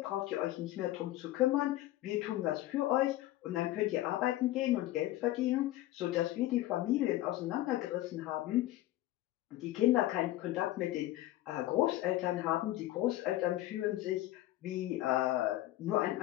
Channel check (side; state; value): right; quieter; 15.5 dB